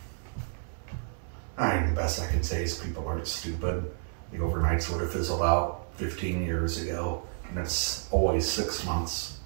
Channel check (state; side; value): silent; left; 58 dB below the other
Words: mean, the best I can say is people aren't stupid. The overnights would have fizzled out 15 years ago, and it's always 6 months